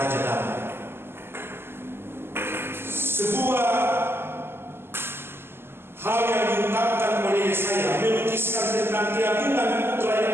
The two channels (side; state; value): left; late; 0.11 ms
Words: Damai. Sebuah hal yang diungkapkan oleh Yesaya melukiskan tentang keagungan putra